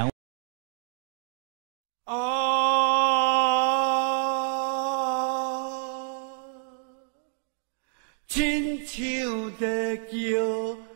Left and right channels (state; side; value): silent; left; digital silence